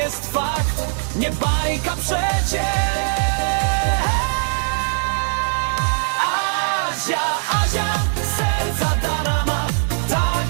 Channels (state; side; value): silent; left; digital silence